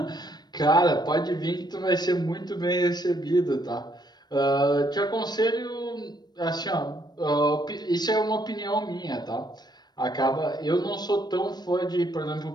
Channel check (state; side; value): late; right; 0.20 ms